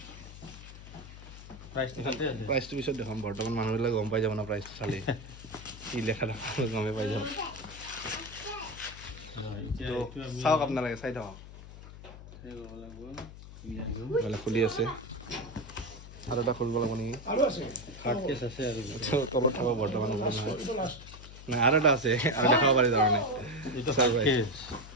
প্ৰাইচটো পিছত দেখাম বৰ্তমান মানুহবিলাক গম পাই যাব না প্ৰাইচটো চালে কি লেখা থকা গমেই পাই যাব চাওক আপোনালোকে চাই থাকক খুলি আছে আৰু এটা খুলিব লাগিব নেকি তলত থাকক বৰ্তমান নাই আৰু এটা আছে আৰু দেখাব পাৰি তাৰমানে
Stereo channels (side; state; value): left; noise; hum, 15 dB below the sound